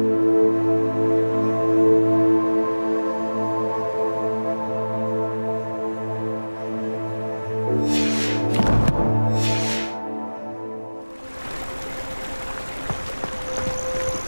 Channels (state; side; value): inverted; both; correlation -1.00